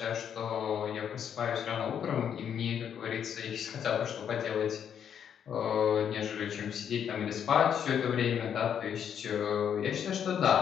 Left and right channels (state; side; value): quieter; right; 8.5 dB